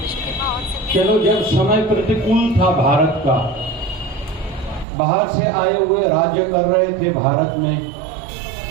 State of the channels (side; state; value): left; drops out; at 4.9 s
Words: चलो जब समय प्रतिकूल था भारत का, बाहर से आए हुए राज्य कर रहे थे भारत में,